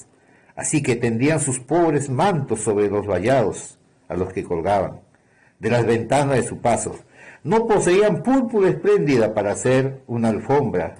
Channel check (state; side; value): identical; both; correlation 1.00